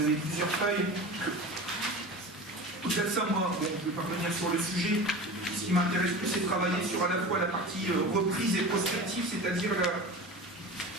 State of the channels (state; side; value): normal; both; correlation 0.33